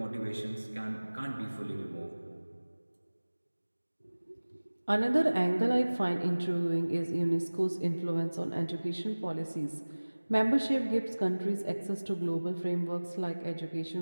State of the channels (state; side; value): inverted; both; correlation -1.00